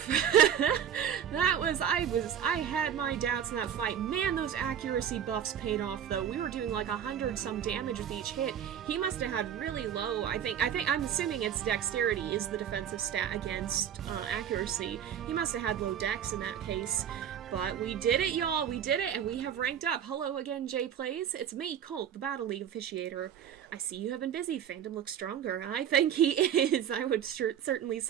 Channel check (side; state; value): left; quieter; 9.1 dB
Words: I had my doubts in that fight. Man, those accuracy buffs paid off though. We were doing like 100 some damage with each hit. He must have had really low, I'm assuming it's dexterity is the defensive stat against accuracy. He must have had low dex in that case. But we did it, y'all! We did it, and we have ranked up. Hello again, JayPlays. It's me, Colt, the Battle League officiator. I see you have been busy. Phantom looks stronger. I think he is. I would certainly